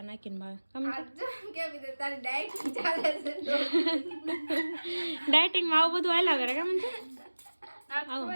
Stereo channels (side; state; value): both; inverted; correlation -1.00